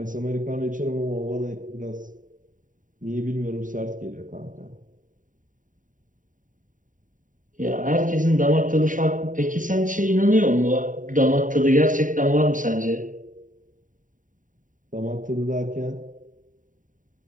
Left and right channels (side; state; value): left; late; 0.38 ms